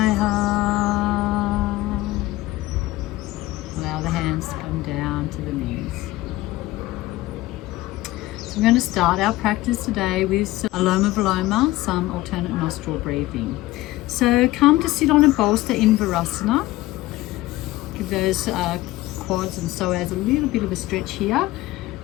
Allow the hands to come down to the knees. So we're going to start our practice today with some Aloma Viloma, some alternate nostril breathing. So come to sit on a bolster in Virasana. Give those quads and psoas a little bit of a stretch here.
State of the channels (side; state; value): right; quieter; 17.6 dB